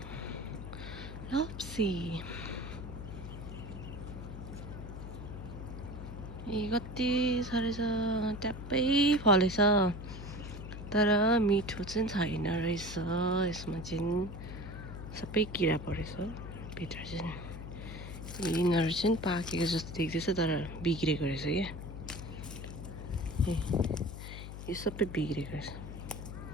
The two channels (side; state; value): left; noise; hum, 9 dB below the sound